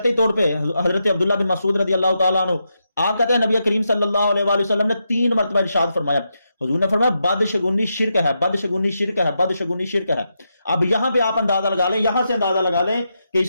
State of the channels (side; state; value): both; inverted; correlation -0.85